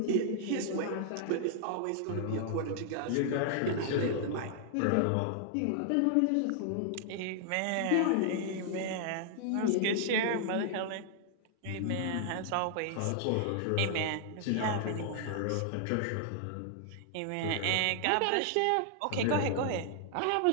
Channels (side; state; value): both; different; correlation -0.01